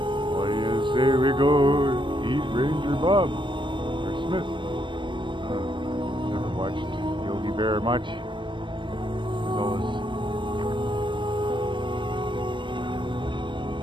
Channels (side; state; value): left; late; 0.23 ms